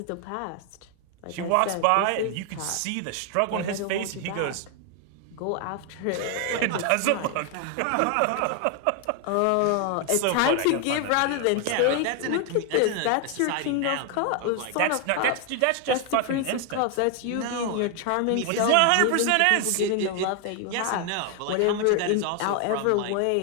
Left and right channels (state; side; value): different; both; correlation 0.00